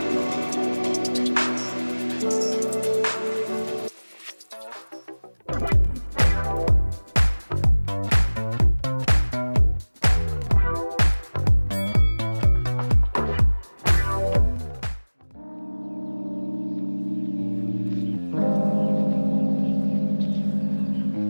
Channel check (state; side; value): inverted; both; correlation -1.00